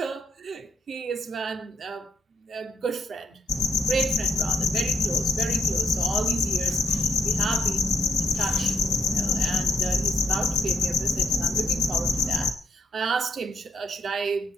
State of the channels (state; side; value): normal; both; correlation 0.67